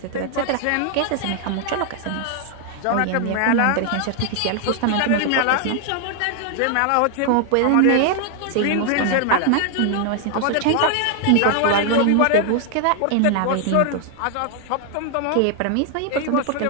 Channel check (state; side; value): different; both; correlation 0.00